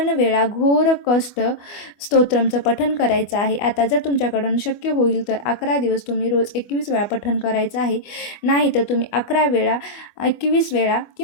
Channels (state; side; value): late; right; 24 ms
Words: वेळा घोर कष्ट स्तोत्रमचं पठण करायचं आहे. आता जर तुमच्याकडून शक्य होईल तर 11 दिवस तुम्ही रोज 21 वेळा पठण करायचं आहे. नाही तर तुम्ही 11 वेळा 21 वेळा